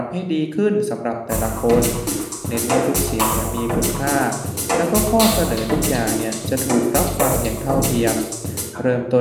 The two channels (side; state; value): both; identical; correlation 1.00